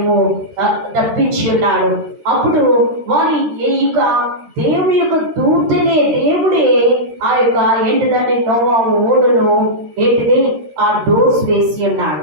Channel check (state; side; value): late; left; 13 ms